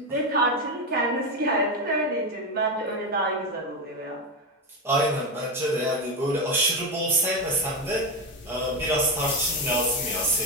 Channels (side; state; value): both; normal; correlation 0.13